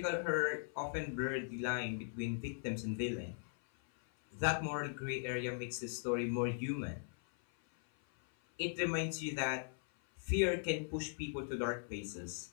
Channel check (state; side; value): silent; right; 51 dB below the other